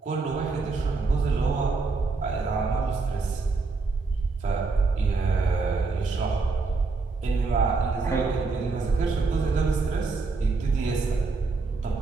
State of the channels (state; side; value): quieter; left; 4.1 dB